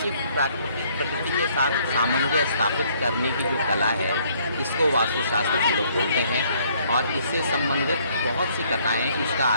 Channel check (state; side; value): inverted; both; correlation -0.64